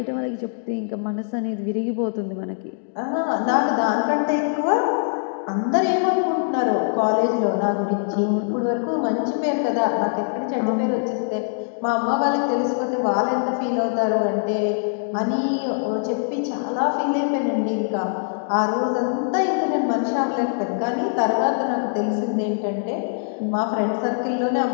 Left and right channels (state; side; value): silent; right; digital silence